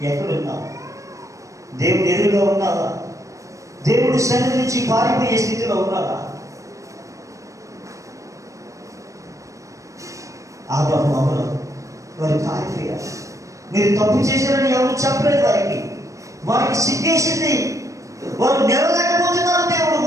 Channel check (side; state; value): left; late; 0.15 ms